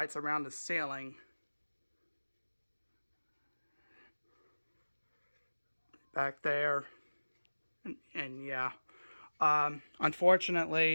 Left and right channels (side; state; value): both; inverted; correlation -1.00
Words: around the ceiling. Back there. And yeah.